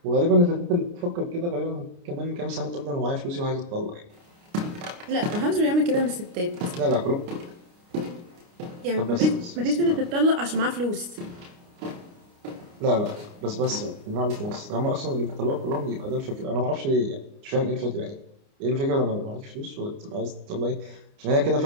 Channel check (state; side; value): late; left; 29 ms